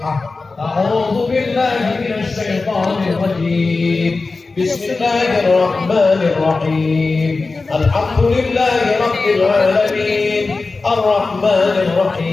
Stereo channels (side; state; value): right; quieter; 3.8 dB